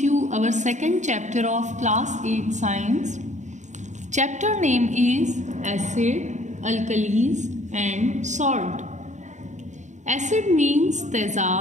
our second chapter of class 8 science. Chapter name is acid, alkalis and salt. Acid means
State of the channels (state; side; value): late; left; 0.34 ms